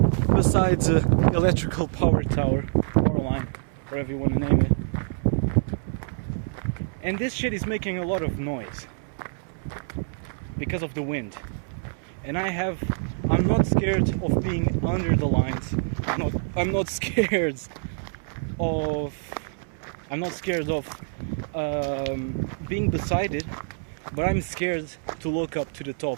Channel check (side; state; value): left; silent; 61 dB below the other